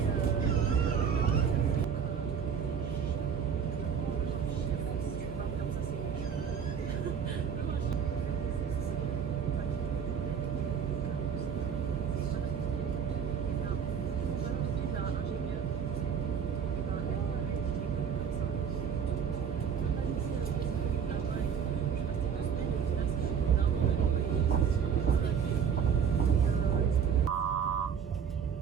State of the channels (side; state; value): left; quieter; 7.3 dB